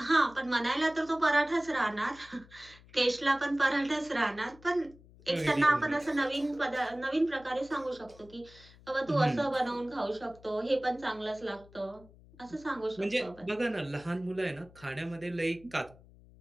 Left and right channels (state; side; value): noise; left; hum, 24 dB below the sound